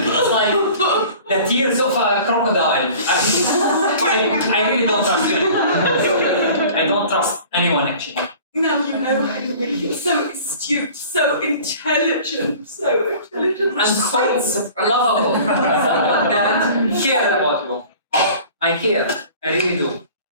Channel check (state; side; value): inverted; both; correlation -0.45